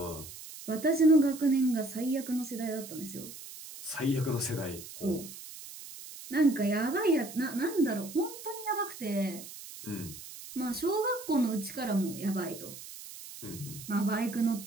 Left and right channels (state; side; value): noise; right; hiss, 14 dB below the sound